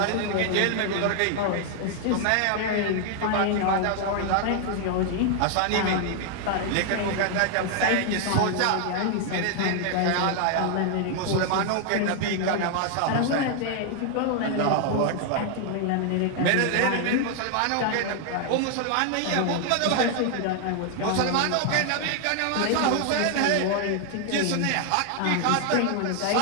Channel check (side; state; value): both; different; correlation 0.00